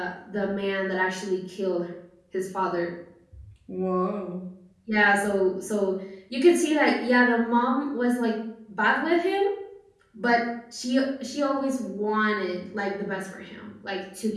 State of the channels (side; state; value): both; identical; correlation 1.00